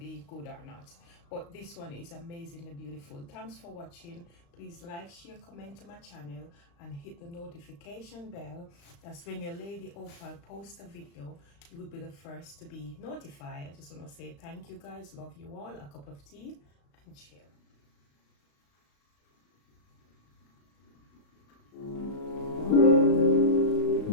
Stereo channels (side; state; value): right; late; 35 ms